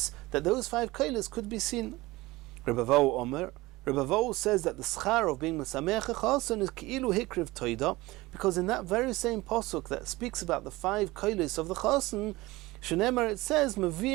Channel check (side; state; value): left; quieter; 20.2 dB